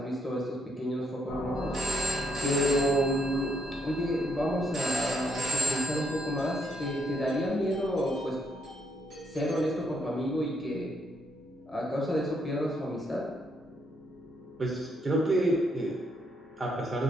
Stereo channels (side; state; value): both; normal; correlation 0.74